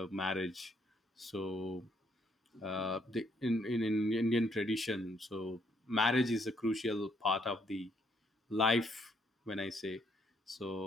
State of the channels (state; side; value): normal; both; correlation 0.70